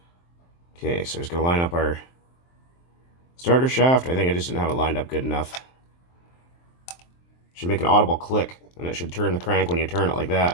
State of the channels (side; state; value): right; late; 23 ms